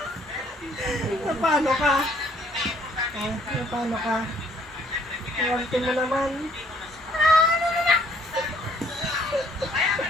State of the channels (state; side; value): normal; both; correlation 0.63